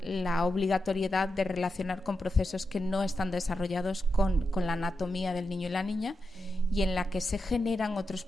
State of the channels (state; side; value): normal; both; correlation 0.88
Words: la obligatoriedad de relacionar con procesos que no están desarrollados con la anatomía del niño y la niña y en la que se generan otros